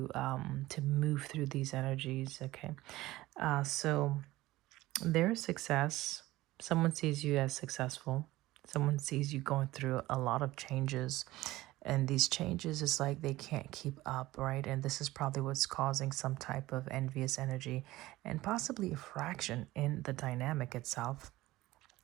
to move through these energies, okay? So there's success. Someone sees you as successful. Someone sees you going through a lot of changes. And these changes is like they can't keep up, right? And this is probably what's causing some type of envious energy and possibly a fraction in the dynamic itself.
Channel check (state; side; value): quieter; left; 17.6 dB